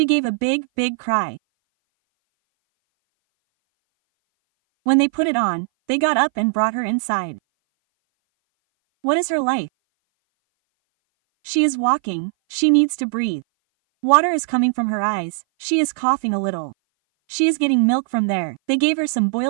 gave a big, big cry. When they put it on, they got up and brought her inside. What is her life? She is walking, she needs to breathe. Water is coming from her eyes, she is coughing a little. She is getting milk from there. They gave her some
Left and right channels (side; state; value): left; silent; 59 dB below the other